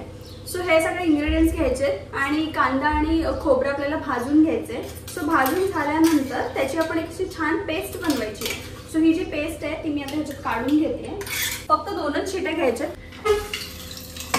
सो हे सगळे इंग्रेडियंट्स घ्यायचे आणि कांदा आणि खोबरं आपल्याला भाजून घ्यायचे. सो भाजून झाल्यानंतर त्याची आपण एक अशी छान पेस्ट बनवायची. सो ही जी पेस्ट आहे ती मी आता ह्याच्यात काढून घेते. फक्त 2च शिट्या घ्यायच्या.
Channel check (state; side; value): identical; both; correlation 1.00